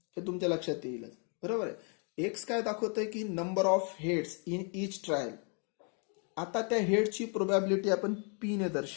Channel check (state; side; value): quieter; right; 39.7 dB